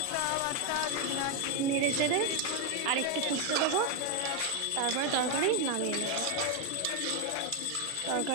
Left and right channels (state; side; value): different; both; correlation 0.01